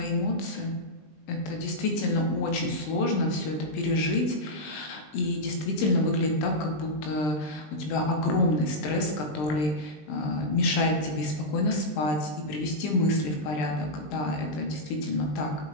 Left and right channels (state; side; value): late; right; 20 ms